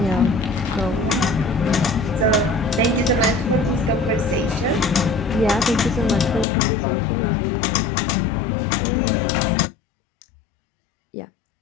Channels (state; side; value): drops out; right; at 6.5 s